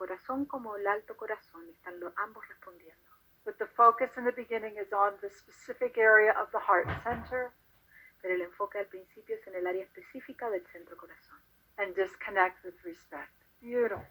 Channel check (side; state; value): both; identical; correlation 1.00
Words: como el alto corazón, están ambos respondiendo. But the focus in the beginning is on the specific area of the heart center. Pero el enfoque al principio es en el área específica del centro corazón. And disconnect with respect.